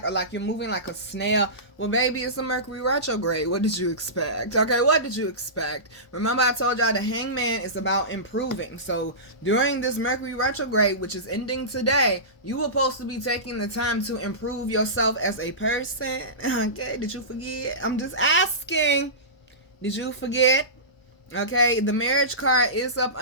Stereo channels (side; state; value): right; late; 1.0 ms